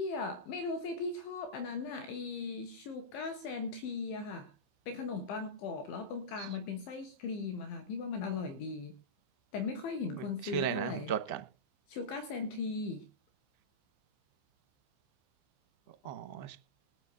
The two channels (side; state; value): right; late; 15 ms